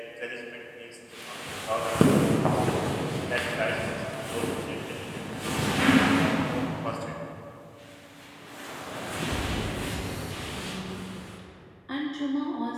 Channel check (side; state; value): both; identical; correlation 1.00